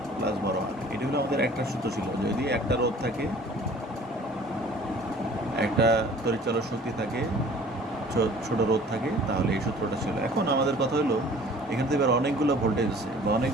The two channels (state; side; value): normal; both; correlation 0.49